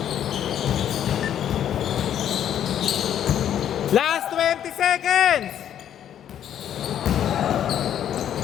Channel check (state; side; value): quieter; right; 10.1 dB